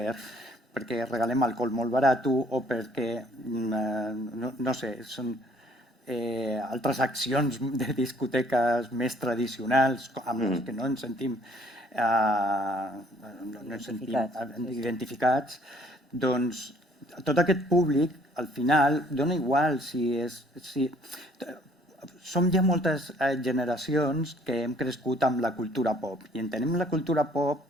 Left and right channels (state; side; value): normal; both; correlation 0.60